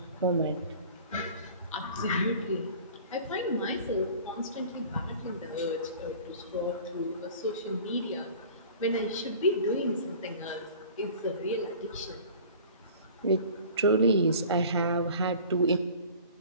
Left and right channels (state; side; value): inverted; both; correlation -0.45